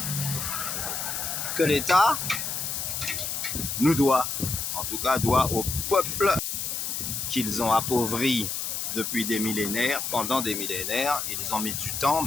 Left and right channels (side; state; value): left; noise; hiss, 3 dB below the sound